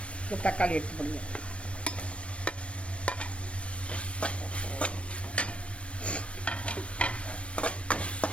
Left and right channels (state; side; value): late; right; 0.061 ms